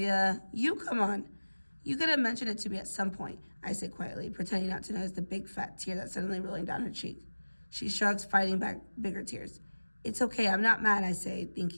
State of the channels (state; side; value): inverted; both; correlation -1.00